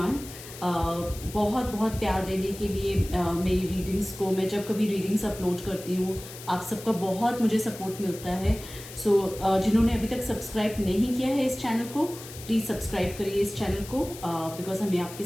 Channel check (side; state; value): left; noise; hiss, 14 dB below the sound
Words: बहुत बहुत प्यार देने के लिए मेरी रीडिंग्स को। मैं जब कभी रीडिंग्स अपलोड करती हूँ आप सबका बहुत मुझे सपोर्ट मिलता है। सो जिन्होंने अभी तक सब्सक्राइब नहीं किया है इस चैनल को, प्लीज़ सब्सक्राइब करिए इस चैनल को बिकॉज हमें आपके